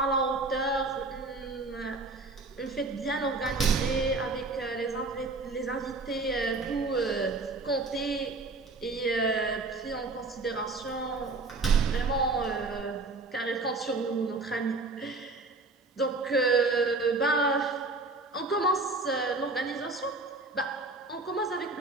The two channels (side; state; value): left; quieter; 3.4 dB